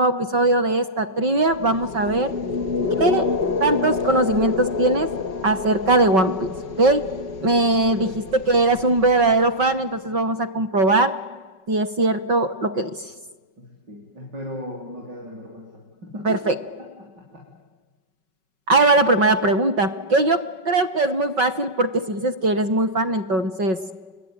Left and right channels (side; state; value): left; late; 5.3 ms